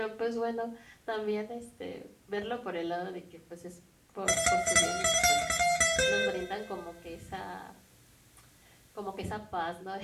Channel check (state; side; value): identical; both; correlation 1.00